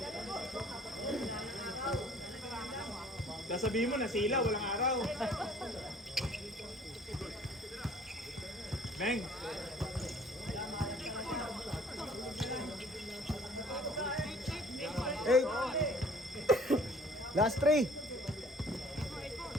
Sasabihin mo na sila, walang araw. Beng! Eight. Last three.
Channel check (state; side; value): normal; both; correlation 0.54